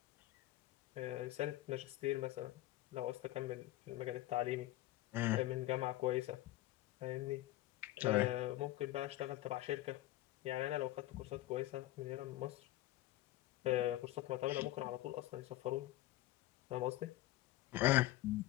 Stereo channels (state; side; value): quieter; right; 16.1 dB